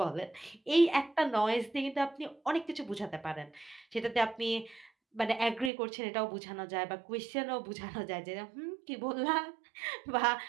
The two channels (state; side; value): drops out; left; at 5.7 s